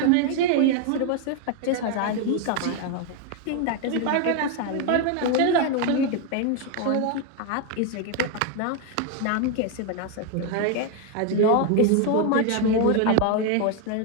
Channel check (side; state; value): both; different; correlation 0.01